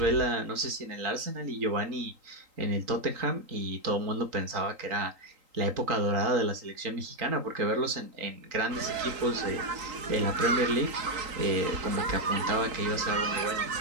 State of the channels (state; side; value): late; left; 3.8 ms